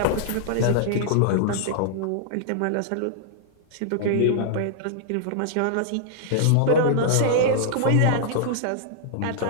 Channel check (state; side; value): different; both; correlation -0.01